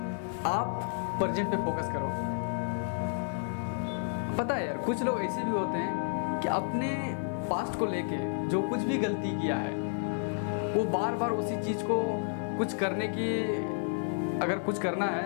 आप प्रेजेंट पे फोकस करो। पता है यार, कुछ लोग ऐसे भी होते हैं कि अपने पास्ट को लेके जो कुछ भी गलती किया है, वो बार बार उसी चीज़ को कुछ करने की, अगर कुछ करना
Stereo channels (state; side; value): silent; right; 57 dB below the other